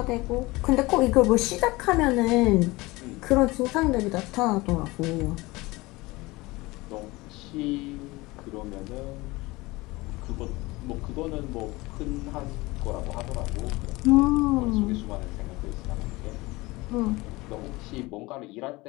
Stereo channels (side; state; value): right; quieter; 21.7 dB